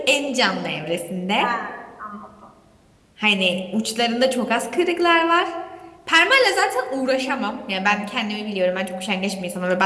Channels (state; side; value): identical; both; correlation 1.00